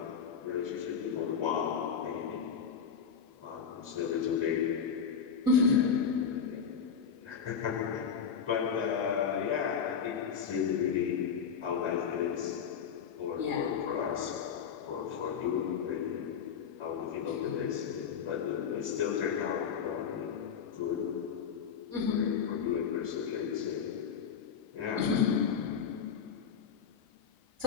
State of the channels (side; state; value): right; quieter; 7.0 dB